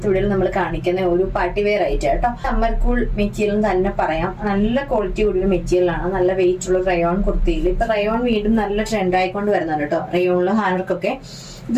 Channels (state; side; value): identical; both; correlation 1.00